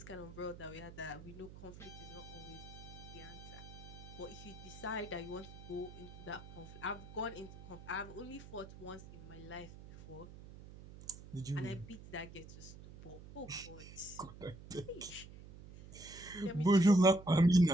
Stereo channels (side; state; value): right; noise; hum, 15 dB below the sound